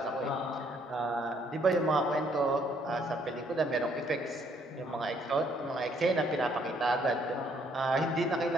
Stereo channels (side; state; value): both; normal; correlation 0.67